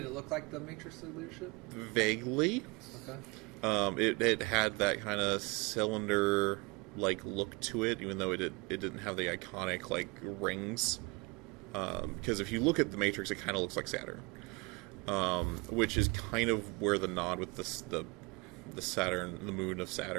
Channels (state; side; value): quieter; left; 27.6 dB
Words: look like the Matrix of Leadership? Vaguely. Okay. It had that kind of cylinder like look to it, even though it didn't have the iconic like rings. Because if you look at the Matrix, it kind of looks like Saturn, which is kind of where the nod with the Saturn, the moon of